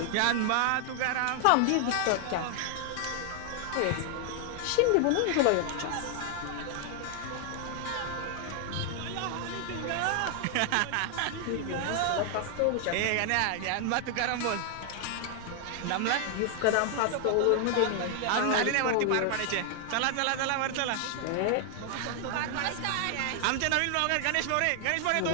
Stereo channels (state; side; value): different; both; correlation 0.00